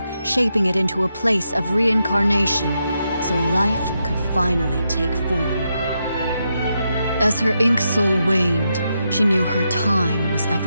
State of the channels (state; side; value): inverted; both; correlation -0.84